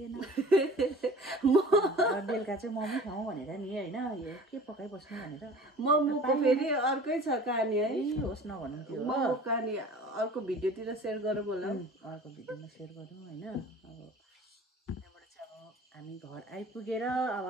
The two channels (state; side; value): normal; both; correlation 0.44